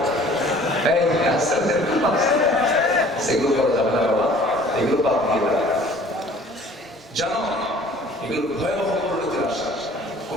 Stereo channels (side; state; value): both; normal; correlation 0.51